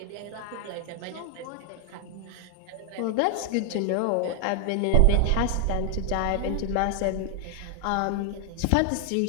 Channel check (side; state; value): both; different; correlation 0.00